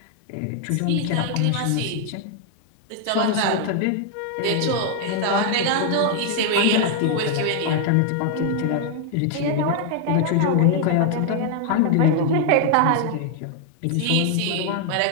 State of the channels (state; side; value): different; both; correlation 0.00